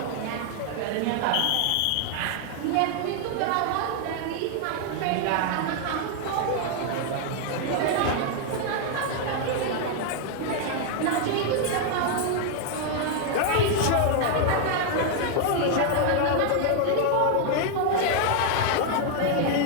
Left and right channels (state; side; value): different; both; correlation 0.00